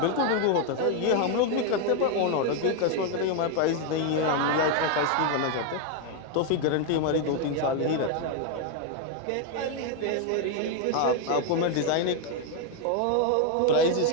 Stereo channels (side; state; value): both; different; correlation 0.01